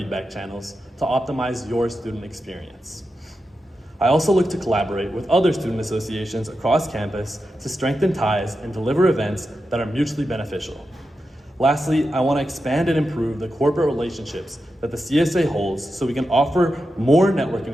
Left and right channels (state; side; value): normal; both; correlation 0.89